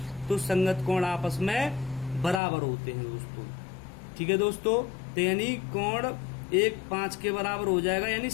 तो संगत कोण आपस में बराबर होते हैं दोस्तों। ठीक है दोस्तों। तो यानी कोण 1 5 के बराबर हो जाएगा, यानी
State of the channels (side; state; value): right; drops out; at 2.4 s